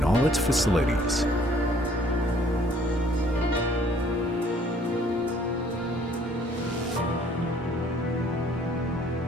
all its facilities.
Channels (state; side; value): normal; both; correlation 0.59